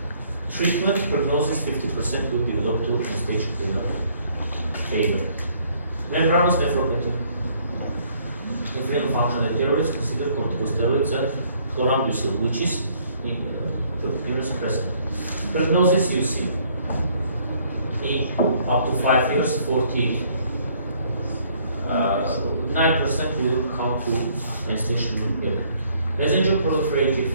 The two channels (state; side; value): inverted; both; correlation -0.63